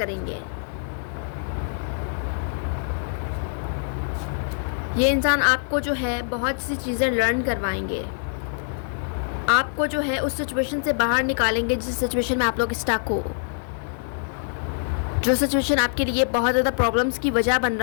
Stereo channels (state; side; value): silent; right; 58 dB below the other